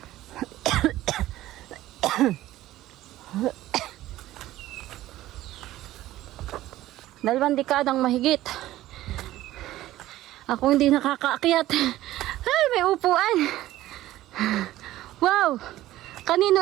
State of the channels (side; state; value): left; quieter; 15.1 dB